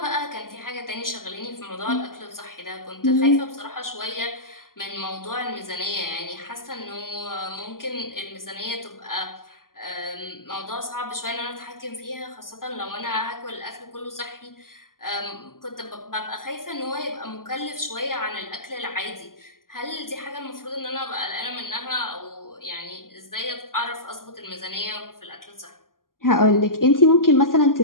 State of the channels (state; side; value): late; right; 0.91 ms